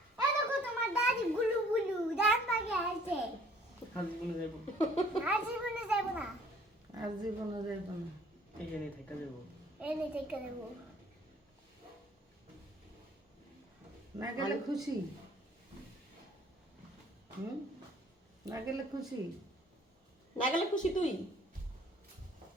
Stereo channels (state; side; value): normal; both; correlation 0.56